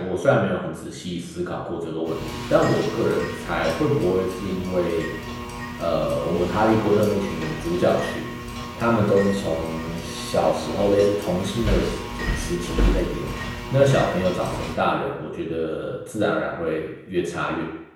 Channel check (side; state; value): both; identical; correlation 1.00